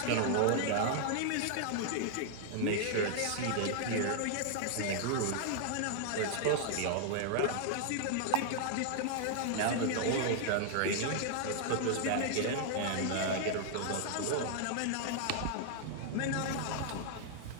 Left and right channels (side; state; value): both; different; correlation 0.00